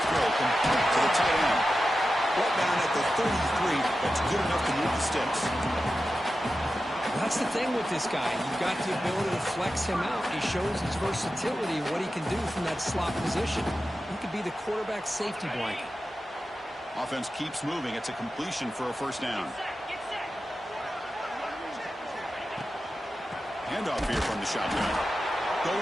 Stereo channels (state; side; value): normal; both; correlation 0.92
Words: throw complete to the tight end. Right down at the 33. That's good enough to move the sticks. That's the thing with this guy. You've got the ability to flex him out. He shows his versatility and what he can do from that slot position. He could be the quarterback's safety blanket. Offense keeps moving. It's a completion for a 1st down. Handoff here from the shotgun.